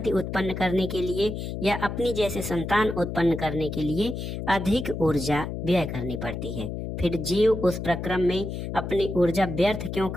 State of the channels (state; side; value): noise; left; hum, 5 dB below the sound